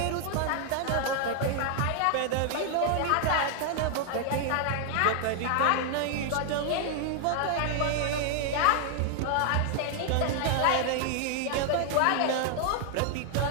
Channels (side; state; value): both; different; correlation 0.00